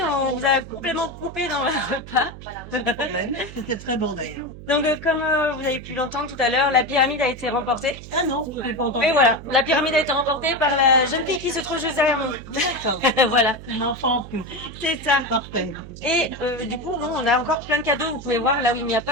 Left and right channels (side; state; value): right; noise; hum, 14 dB below the sound